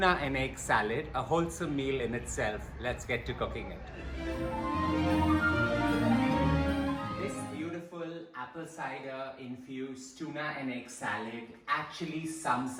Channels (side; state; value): both; identical; correlation 1.00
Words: and egg salad, a wholesome meal in itself. Let's get to cooking it. This beautiful apple cider infused tuna and egg salad actually sums